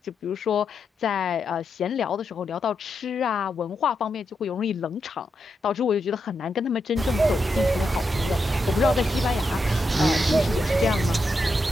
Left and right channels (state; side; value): normal; both; correlation 0.84